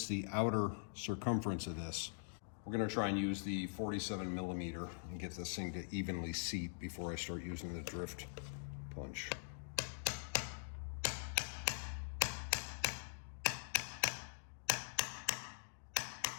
the outer circumference of this. We're gonna try and use the 47 millimeter and get this thing to evenly seat before I start using the drift punch.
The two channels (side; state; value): right; silent; digital silence